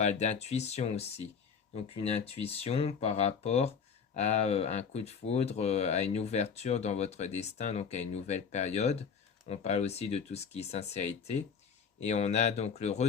d'intuition aussi. Donc une intuition par rapport à un coup de foudre, à une ouverture dans votre destin, donc à une nouvelle période. On parle aussi de tout ce qui est sincérité. Et on a donc le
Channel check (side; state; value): right; quieter; 6.3 dB